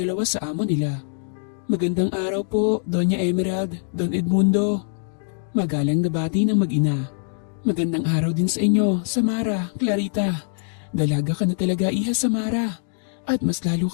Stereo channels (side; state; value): right; silent; digital silence